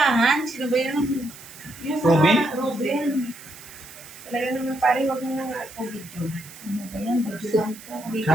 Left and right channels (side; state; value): right; noise; hiss, 18 dB below the sound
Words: Sino ba yun? Yung Robin? Robin. Talaga naman pare, wag mo na nga ako video. Ano ba yan? Video lang to.